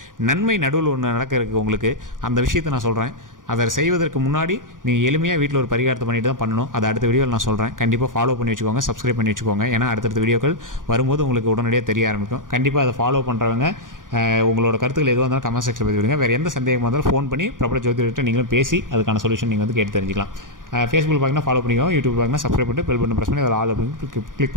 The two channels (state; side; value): late; left; 0.89 ms